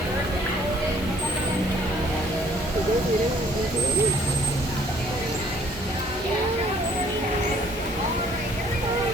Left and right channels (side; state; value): both; normal; correlation 0.61